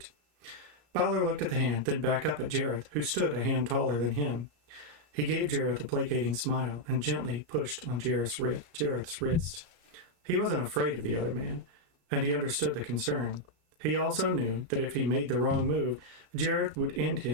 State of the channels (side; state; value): left; late; 34 ms